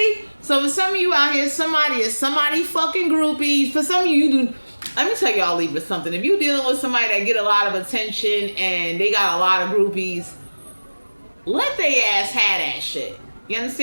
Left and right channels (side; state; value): both; inverted; correlation -1.00